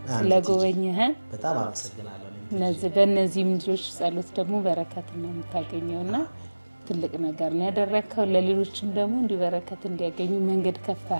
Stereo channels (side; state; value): both; inverted; correlation -1.00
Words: ስለጎበኘህን በጣም አመሰግናለሁ። በእነዚህም ልጆች ጸሎት ደግሞ በረከት ነው የምታገኘውና ትልቅ ነገር ነው ያደረከው። ለሌሎችም ደግሞ እንዲህ በረከት እንዲያገኙ መንገድ